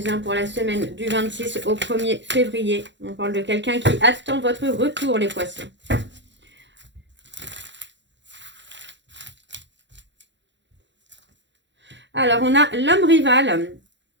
pour la semaine du 26 au 1er février. On parle de quelqu'un qui attend votre retour, les poissons. Alors, on a l'homme rival.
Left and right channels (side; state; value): left; late; 0.53 ms